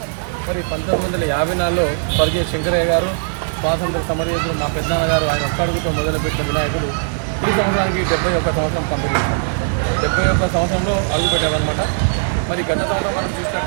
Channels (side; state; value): left; silent; 55 dB below the other